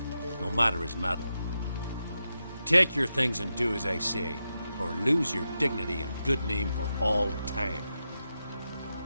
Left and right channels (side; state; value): both; inverted; correlation -0.88